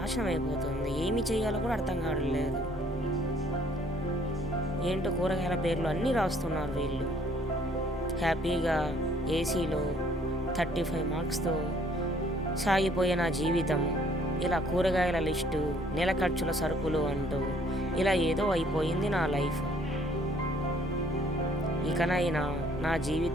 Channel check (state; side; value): normal; both; correlation 0.61